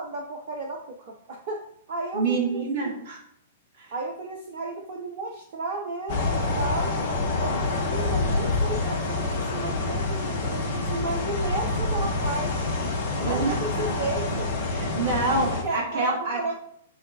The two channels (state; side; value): inverted; both; correlation -0.38